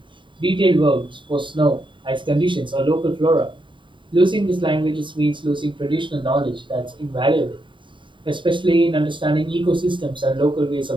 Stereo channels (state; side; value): late; left; 0.23 ms